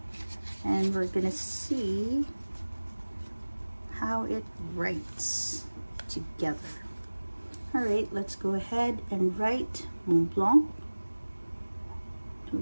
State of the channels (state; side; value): inverted; both; correlation -1.00